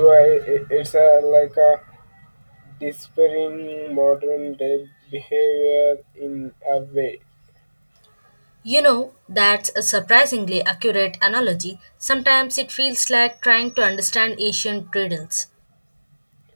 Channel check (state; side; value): inverted; both; correlation -1.00